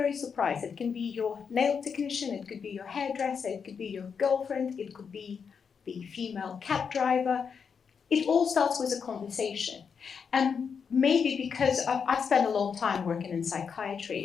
surprised, it can be your nail technician, it could be your hairdresser, it could be your girlfriend, it could be the female cab driver. It all starts with a conversation. And maybe because I've spent a long time working in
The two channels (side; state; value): right; quieter; 6.3 dB